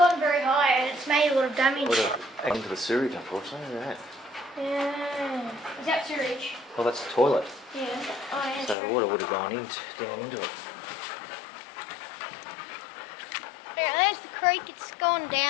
very high and it's made a lot of damage. Would have into the sewage, unfortunately. Look at that. Yeah. Is that sewage? Well, that's the toilet. Yeah. Oh, yeah, So true. the water would have gone down into it. Yeah, there's the creek. It's gone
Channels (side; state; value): right; drops out; at 8.8 s